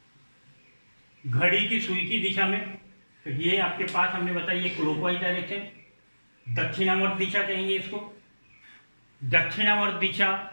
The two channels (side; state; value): both; inverted; correlation -1.00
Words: घड़ी की सुई की दिशा में, तो ये आपके पास हमने बताया क्लॉकवाइज डायरेक्शन, दक्षिणावर्त दिशा कहेंगे इसको। दक्षिणावर्त दिशा,